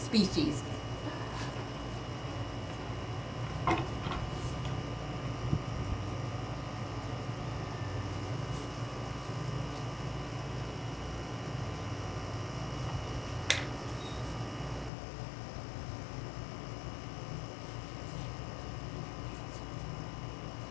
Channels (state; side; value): drops out; right; at 14.9 s